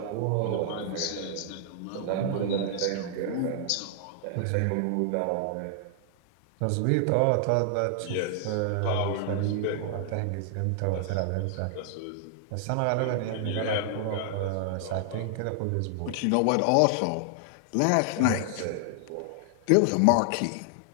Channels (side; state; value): both; different; correlation 0.00